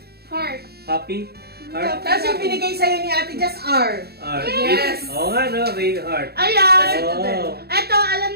Heart. Happy? Heart? Tapos yung binigay sa'yo ni Ate, just R. Heart. Yes. Oo nga no, may heart. Ayan! Oo. Ito, alam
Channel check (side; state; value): left; late; 0.46 ms